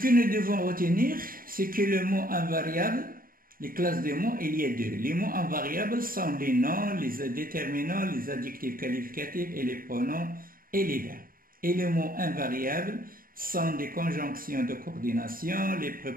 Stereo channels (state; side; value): late; left; 0.41 ms